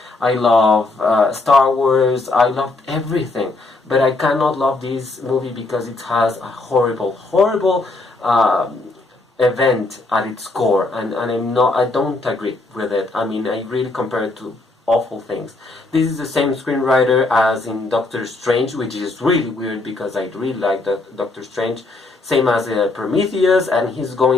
I love Star Wars. I loved everything, but I cannot love this movie because it has a horrible, horrible event at its core, and I don't agree with it. I mean, I really compare it to awful things. This is the same screenwriter as in Doctor Strange, which is really weird because I really like Doctor Strange. Same as Prometheus, and he's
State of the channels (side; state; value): right; quieter; 3.2 dB